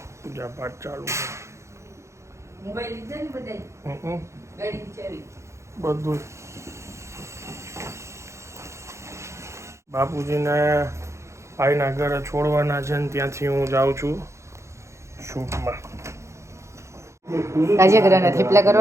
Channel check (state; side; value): late; left; 0.14 ms